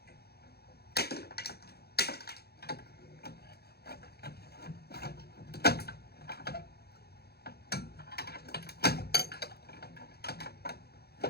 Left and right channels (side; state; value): right; late; 0.46 ms